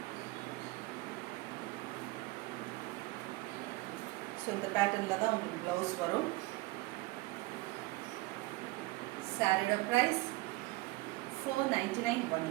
ஸோ இந்த பேட்டர்னில் தான் உங்களுக்கு ப்ளவுஸ் வரும். சாரியோட ப்ரைஸ் 499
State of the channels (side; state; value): left; quieter; 21.5 dB